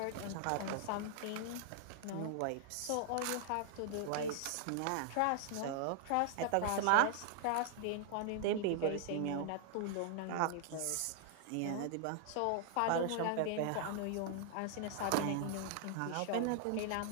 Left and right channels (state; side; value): different; both; correlation -0.01